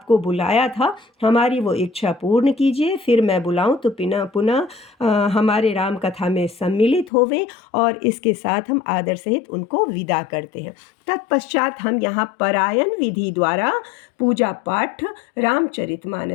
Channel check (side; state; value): right; drops out; at 7.1 s